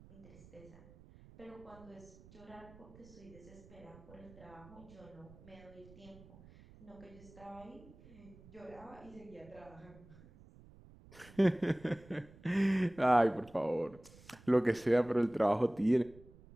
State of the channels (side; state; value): right; noise; rumble, 22 dB below the sound